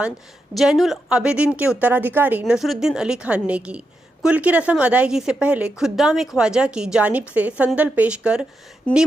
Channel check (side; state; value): both; normal; correlation 0.85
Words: जैनुल आबिदीन के उत्तराधिकारी नसरुद्दीन अली खान ने की। कुल की रस्म अदायगी से पहले खुद्दाम ख्वाजा की जानिब से संदल पेश कर